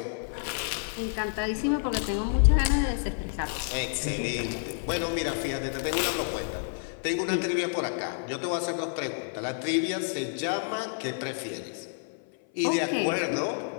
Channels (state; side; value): silent; right; 55 dB below the other